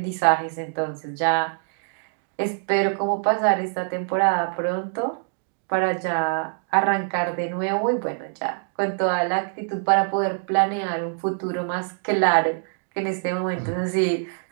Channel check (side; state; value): left; silent; digital silence